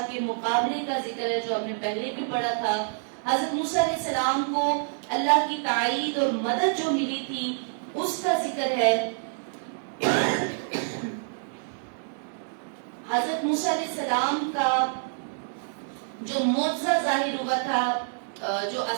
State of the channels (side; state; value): left; silent; digital silence